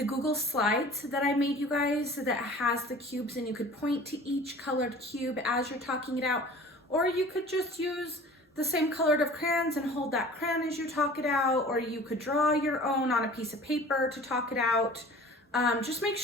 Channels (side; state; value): both; normal; correlation 0.44